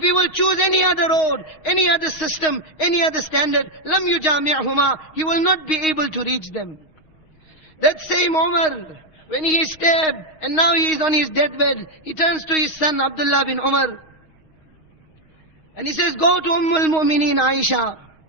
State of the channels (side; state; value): right; late; 6.4 ms